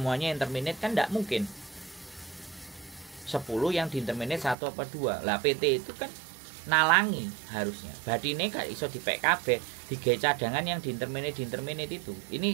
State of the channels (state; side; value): drops out; left; at 4.5 s